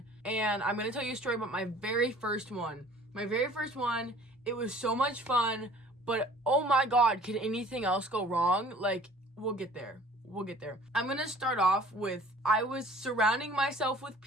And I'm going to tell you a story about my very first one. My very first one, it was so much fun, but oh my god, could anything else go wrong? Like, we'll get there. We'll get there. I'm going to start off with, I was surrounding myself with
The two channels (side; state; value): both; normal; correlation 0.50